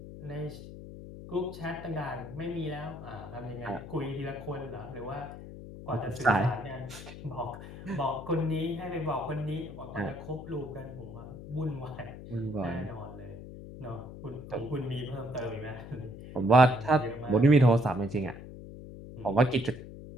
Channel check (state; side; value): noise; left; hum, 13 dB below the sound